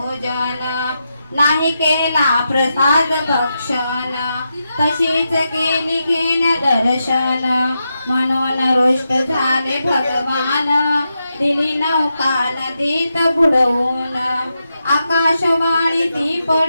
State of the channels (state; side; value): inverted; both; correlation -0.87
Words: नाही केला प्रसाद भक्षण तशीच गेली घेण्या दर्शन म्हणून रुष्ट झाले भगवान दिली नौका नदीत बुडवून आकाशवाणी ती